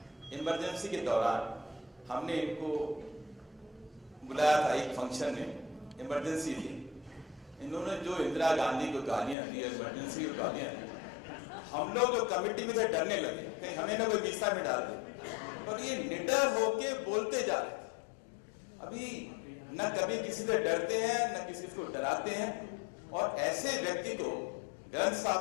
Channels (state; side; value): drops out; right; at 9.3 s